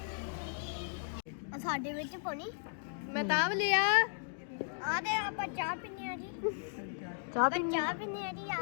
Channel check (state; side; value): silent; right; digital silence